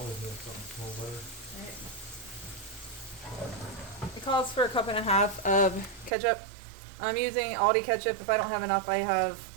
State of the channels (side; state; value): left; drops out; at 6.1 s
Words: make something smell better. Right. It calls for 1.5 cups of ketchup. I'm using Aldi ketchup. If I don't have enough, I have